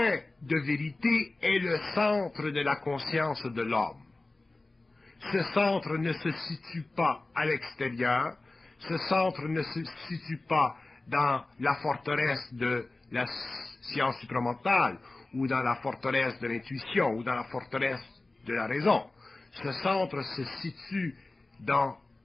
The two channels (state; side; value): quieter; right; 3.1 dB